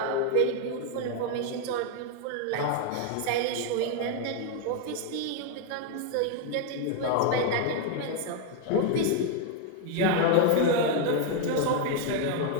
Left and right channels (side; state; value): both; different; correlation 0.00